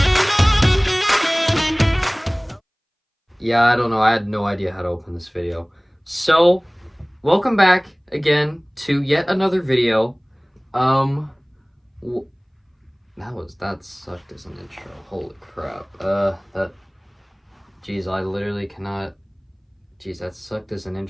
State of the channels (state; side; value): identical; both; correlation 1.00